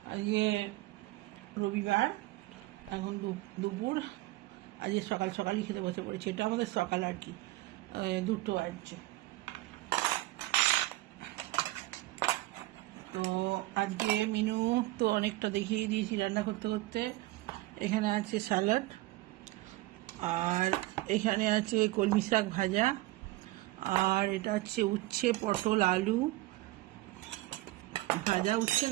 আজকে রবিবার, এখন দুপুর। আজকে সকাল সকালই খেতে বসে পড়েছি। এটা আমাদের সকাল আর কি, 2টো বাজছে। তো আজকে মেনু তো অনেকটা দেখিয়ে দিয়েছি রান্না করতে করতে। এখানে আছে স্যালাড, আর এখানে আছে কলমি শাক ভাজা, আর এটা হচ্ছে উচ্ছে পটল আলু ভাজা, উচ্ছে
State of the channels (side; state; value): left; quieter; 18.9 dB